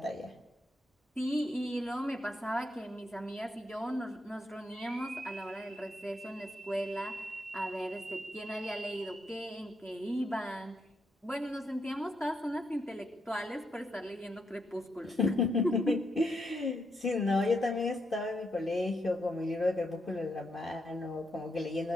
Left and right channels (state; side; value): normal; both; correlation 0.80